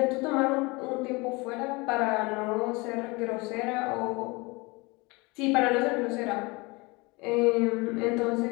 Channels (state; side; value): quieter; right; 25.6 dB